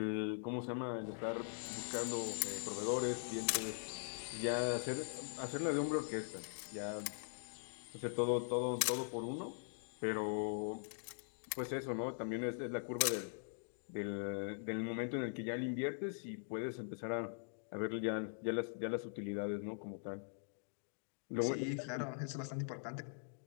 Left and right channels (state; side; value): silent; right; digital silence